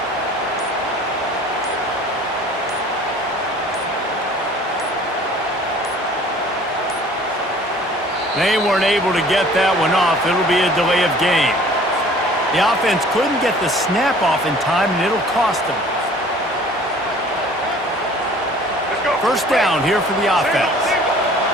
They weren't able to get that one off. It'll be a delay of game. The offense couldn't get the snap off in time, and it'll cost them. First down here for the offense.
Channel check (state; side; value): normal; both; correlation 0.50